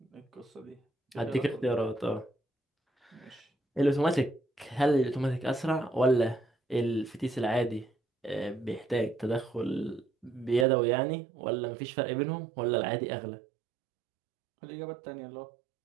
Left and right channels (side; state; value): left; drops out; at 10.7 s